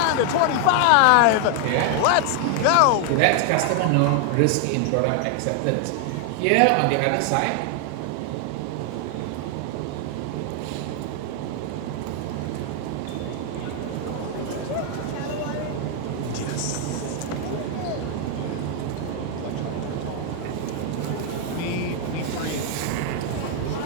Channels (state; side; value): different; both; correlation 0.00